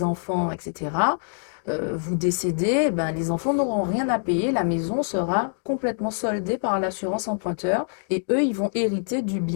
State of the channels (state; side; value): silent; right; digital silence